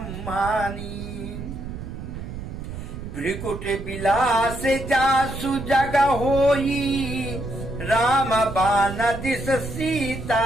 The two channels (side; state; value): right; noise; rumble, 9 dB below the sound